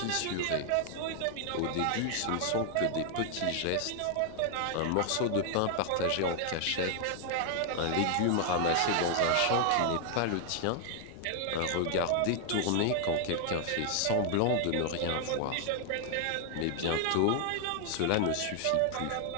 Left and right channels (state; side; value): different; both; correlation 0.00